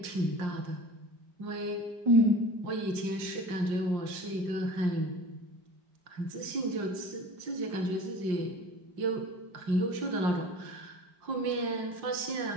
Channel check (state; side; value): late; left; 5.6 ms